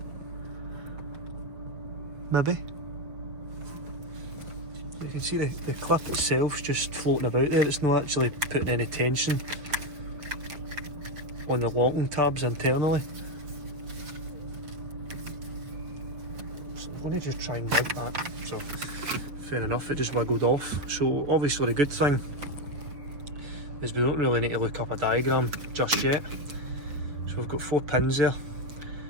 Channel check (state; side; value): late; left; 6.9 ms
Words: Maybe. So you can see the clip itself's just floating about there, it's not actually putting any tension on the locking tabs internally. So I'm going to just try and mount that. So fair enough, it just wiggled off. So obviously the good thing is we don't really need to look up a diagram just yet. So we've got 4 pins there,